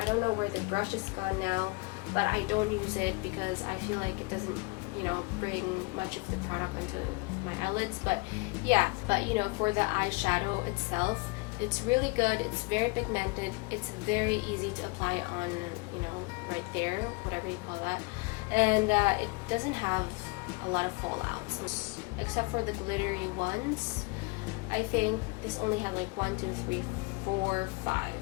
don't know where the brush is gone now, but I don't use it because I feel like it doesn't, you know, bring much of the product onto my eyelids. But yeah, but you know, for the eyeshadow itself, it's really good. It's very pigmented. It's very easy to apply on, you know, right there, whatever you call that. And it doesn't have a lot of fallouts, except for the glittery ones. I think this only had like 1, 2, 3, 4, 5.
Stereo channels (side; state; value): right; quieter; 27.9 dB